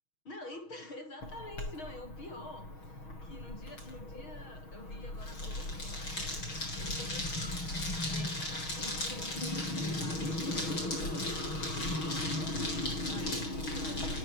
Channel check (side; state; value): right; late; 6.3 ms